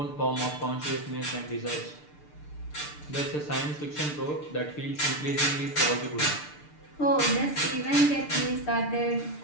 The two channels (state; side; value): late; right; 6.7 ms